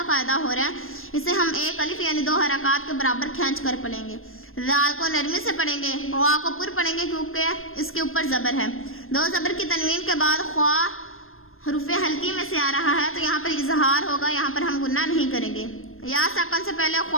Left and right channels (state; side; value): late; right; 0.60 ms